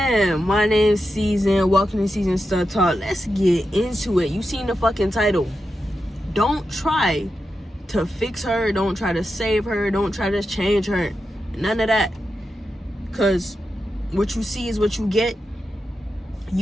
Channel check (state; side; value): normal; both; correlation 0.89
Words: My name's Season. Welcome to Season Stud Talk. Let's get into it. You seen the fucking title. Don't try to fix her. Don't try to save her. Don't try to change her. None of that. Because what you see is what you get.